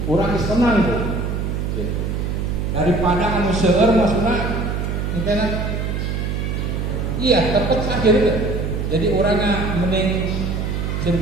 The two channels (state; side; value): noise; right; hum, 2 dB below the sound